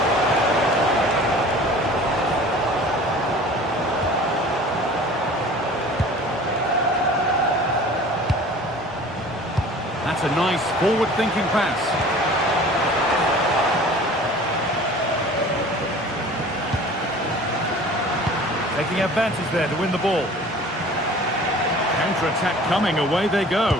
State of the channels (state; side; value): normal; both; correlation 0.45